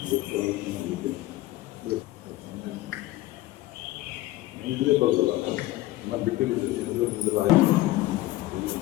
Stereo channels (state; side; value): quieter; right; 17.4 dB